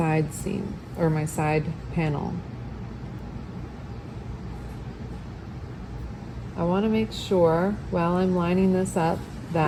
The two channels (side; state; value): both; identical; correlation 1.00